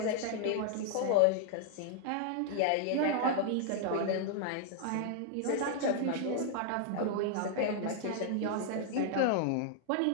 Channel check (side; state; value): both; different; correlation 0.00